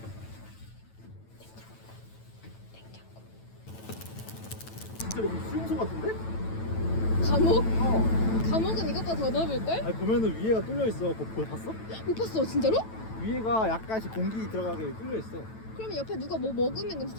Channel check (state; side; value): late; right; 9.1 ms